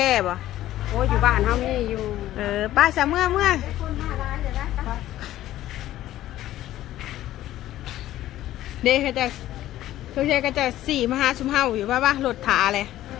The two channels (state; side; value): quieter; right; 13.9 dB